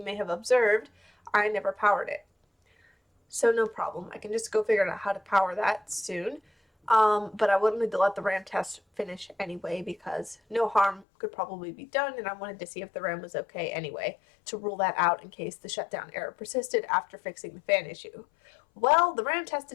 may have observed, I never powered it. So no problem. I can just go figure out how to power that soon. But I wanted to let the RAM test finish anyway because no harm could probably be done, and I wanted to see if the RAM was okay anyway to rule that out in case the shutdown error persisted after fixing the fan issue. Well, the RAM test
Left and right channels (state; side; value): drops out; right; at 11.1 s